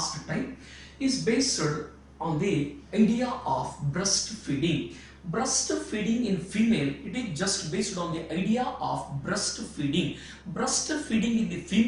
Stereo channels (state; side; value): identical; both; correlation 1.00